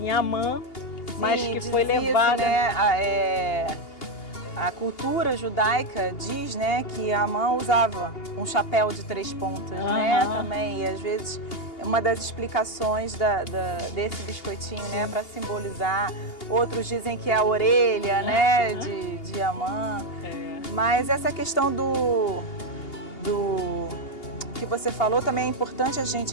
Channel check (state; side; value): late; right; 2.8 ms